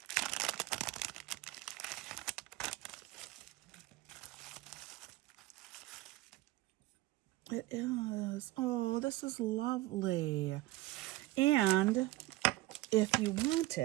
It is. Oh, this is lovely. And if you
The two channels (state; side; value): quieter; left; 18.0 dB